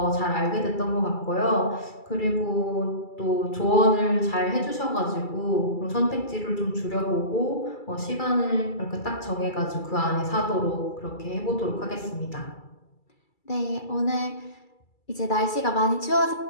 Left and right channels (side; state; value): right; late; 2.3 ms